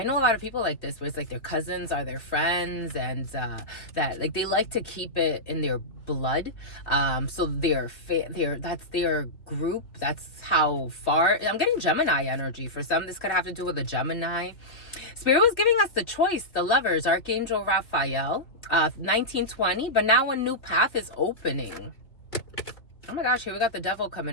know a lot of people like this, where it's like their cousins are their friends, and that like they like to keep it in their blood. So that's their group. That's how far. I'm getting Gemini energy. For some, this could have to do with a Gemini. Spirit was giving us the choice, the Lovers, Archangel Raphael, 1920, but now a new path is opening. Oh my gosh, here we got the devil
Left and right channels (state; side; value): late; right; 2.8 ms